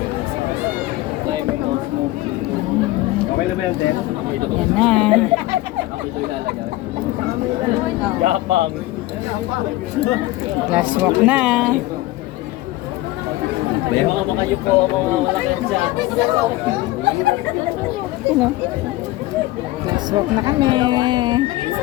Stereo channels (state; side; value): quieter; right; 17.8 dB